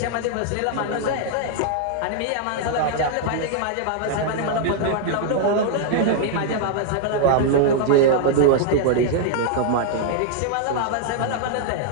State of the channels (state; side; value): different; both; correlation -0.01